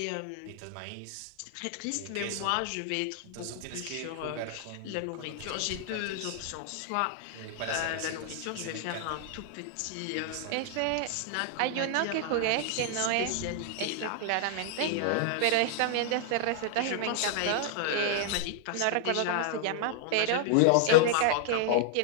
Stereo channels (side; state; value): both; different; correlation -0.01